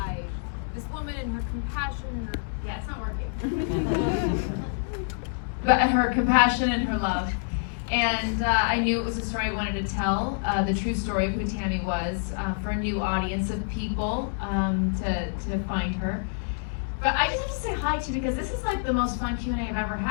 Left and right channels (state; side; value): silent; right; digital silence